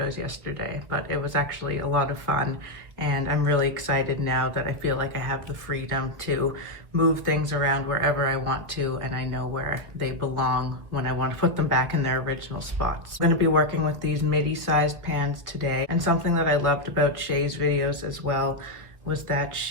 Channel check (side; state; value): left; late; 1.8 ms